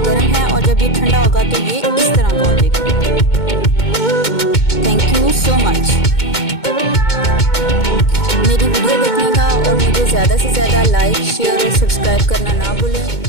है और जब ये ठंडा होगा तो ये इस तरह का हो जाएगा। थैंक यू सो मच मेरी वीडियो देखने का, और मुझे ज़्यादा से ज़्यादा लाइक, शेयर और सब्सक्राइब करना ना भूलें।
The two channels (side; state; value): right; late; 2.2 ms